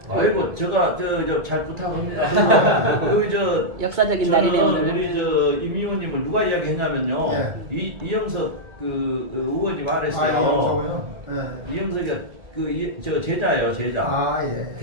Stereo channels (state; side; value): late; left; 1.7 ms